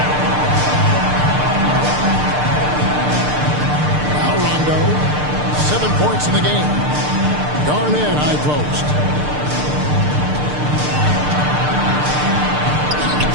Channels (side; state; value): left; late; 6.7 ms